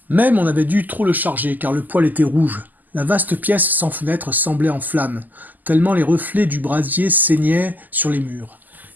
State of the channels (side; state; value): left; late; 0.084 ms